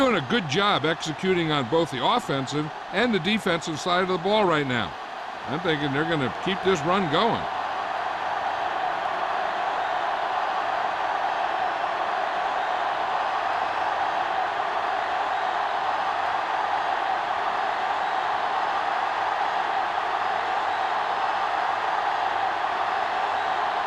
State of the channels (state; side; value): identical; both; correlation 1.00